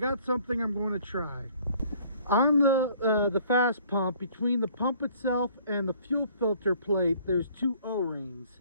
something I'm going to try. On the fast pump, between the pump itself and the fuel filter plate, there's two O-rings.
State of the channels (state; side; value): inverted; both; correlation -0.57